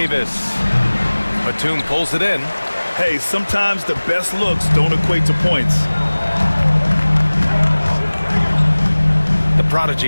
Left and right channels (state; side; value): inverted; both; correlation -1.00